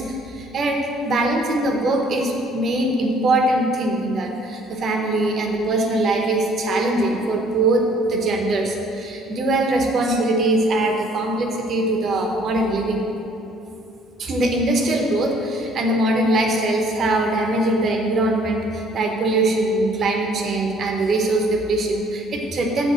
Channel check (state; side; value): normal; both; correlation 0.59